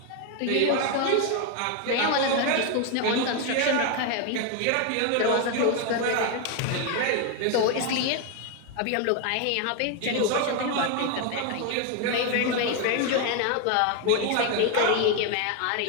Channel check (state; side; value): different; both; correlation 0.01